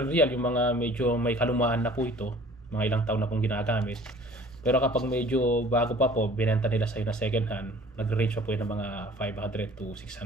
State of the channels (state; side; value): normal; both; correlation 0.49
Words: riyal, yung mga medyo may kalumaan na po ito, mga ilang taon na pong ginagamit. Pero kapag medyo bago pa po, binenta nila sa'yo na second hand, nag-range pa po yun ng mga 500 to